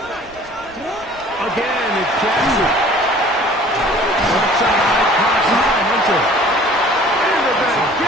Again, it's Jackson. Left side, caught by Hunter. And they're going to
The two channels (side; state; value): right; noise; rumble, 24 dB below the sound